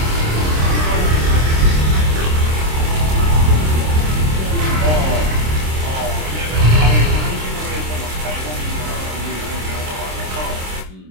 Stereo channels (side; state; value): left; late; 26 ms